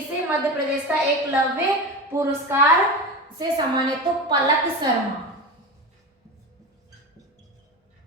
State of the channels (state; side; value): normal; both; correlation 0.24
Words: मध्य प्रदेश का एकलव्य पुरस्कार से सम्मानित, तो पलक शर्मा।